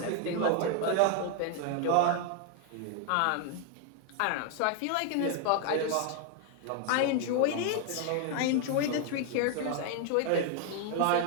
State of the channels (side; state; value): both; different; correlation 0.01